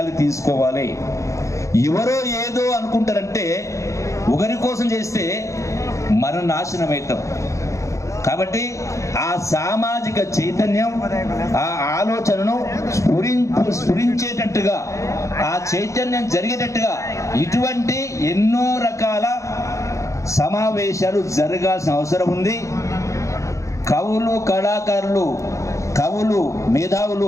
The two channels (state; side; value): late; right; 0.15 ms